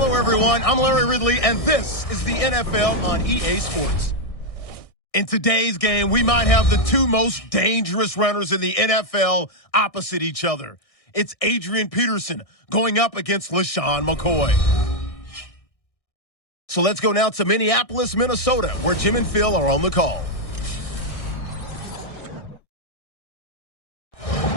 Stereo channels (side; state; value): right; late; 1.6 ms